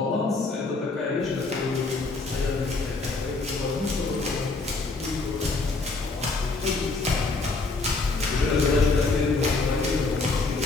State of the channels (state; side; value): quieter; right; 3.7 dB